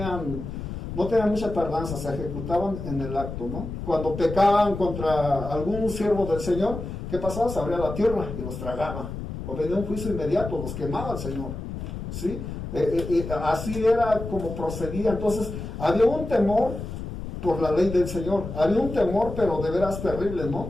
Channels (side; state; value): left; noise; rumble, 7 dB below the sound